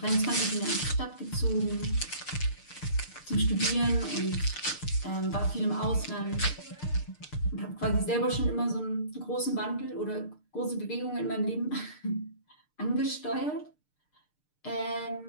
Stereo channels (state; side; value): late; right; 6.6 ms